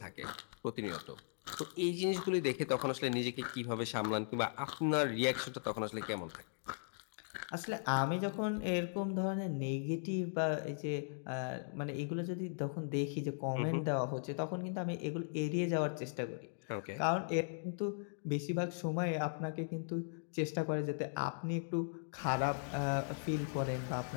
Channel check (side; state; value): right; silent; digital silence